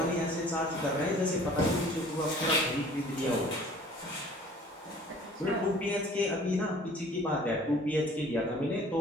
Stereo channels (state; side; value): normal; both; correlation 0.51